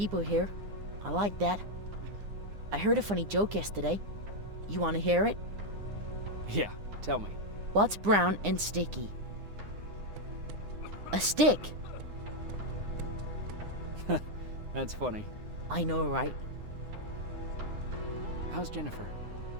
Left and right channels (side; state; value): left; late; 9.8 ms